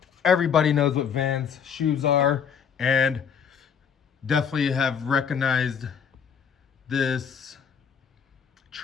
everybody knows what Vans shoes are, and definitely have recognized this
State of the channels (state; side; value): quieter; right; 7.1 dB